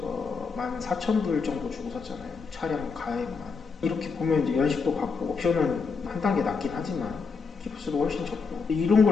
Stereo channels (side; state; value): right; quieter; 5.0 dB